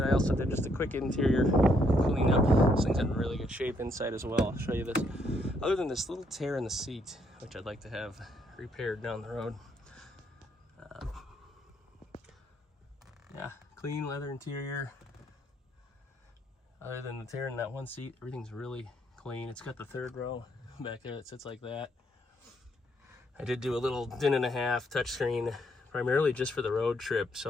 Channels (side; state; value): both; normal; correlation 0.72